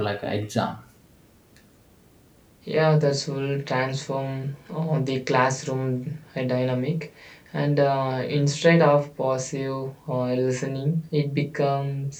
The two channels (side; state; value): both; identical; correlation 1.00